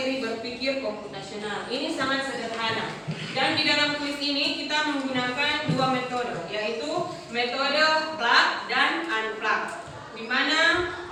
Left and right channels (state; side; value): identical; both; correlation 1.00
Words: berpikir komputasional. Ini sangat sederhana. Dan di dalam kuis ini kita menggunakan dua metode, yaitu metode plug dan unplug, di mana